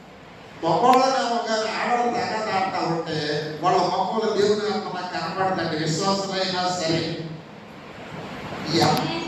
మొక్కళ్ళనేమో కానీ ఆడవాళ్ళు తగాదాడుతూ ఉంటే వాళ్ళ మొక్కలు దేవుని ఆత్మ నాకు కనపడదండి. విశ్వాసులైనా సరే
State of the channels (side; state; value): both; identical; correlation 1.00